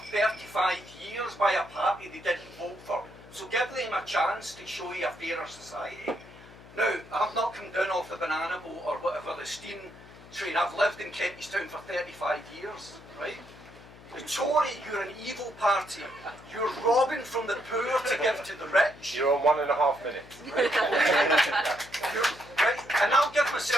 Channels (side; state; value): left; noise; hum, 20 dB below the sound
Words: 35 years by a party they didn't vote for. So give them a chance to show you a fairer society. Now, I've not come down off the banana boat or whatever, the steam train. I've lived in Kentish Town for 35 years, right? The Tory, you're an evil party. You're robbing from the poor to give to the rich. You're on 1.5 minutes. Right? And I'll give